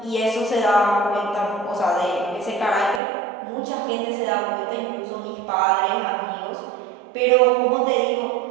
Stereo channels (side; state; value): left; drops out; at 3.0 s